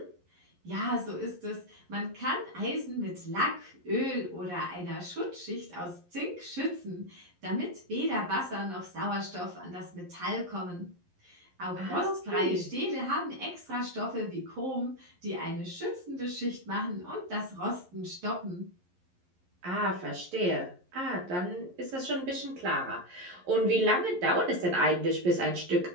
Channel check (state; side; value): late; left; 11 ms